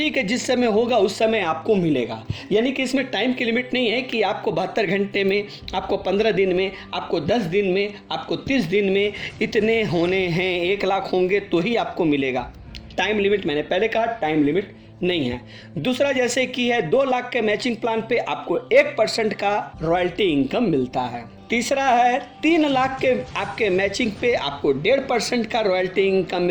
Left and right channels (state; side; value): identical; both; correlation 1.00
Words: है, जिस समय होगा उस समय आपको मिलेगा। यानी कि इसमें टाइम की लिमिट नहीं है कि आपको 72 घंटे में, आपको 15 दिन में, आपको 10 दिन में, आपको 30 दिन में इतने होने हैं, 1 लाख होंगे तो ही आपको मिलेगा। टाइम लिमिट, मैंने पहले कहा, टाइम लिमिट नहीं है। दूसरा, जैसे कि है 2 लाख के मैचिंग प्लान पे आपको 1% का रॉयल्टी इनकम मिलता है। तीसरा है 3 लाख के आपके मैचिंग पे आपको 1.5% का रॉयल्टी इनकम